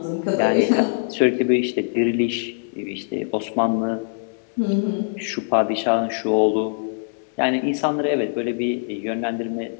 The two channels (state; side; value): silent; right; 64 dB below the other